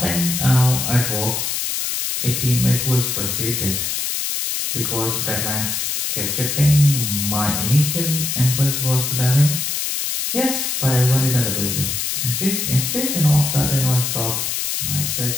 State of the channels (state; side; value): noise; left; hiss, 1 dB below the sound